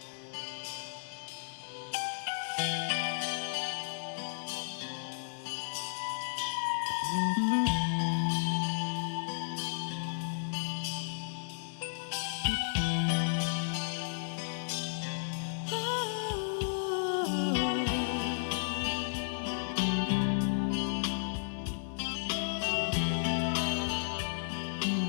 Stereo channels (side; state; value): right; silent; digital silence